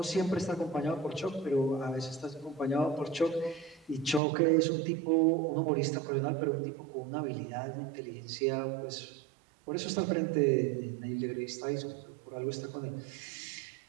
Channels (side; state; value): left; drops out; at 4.2 s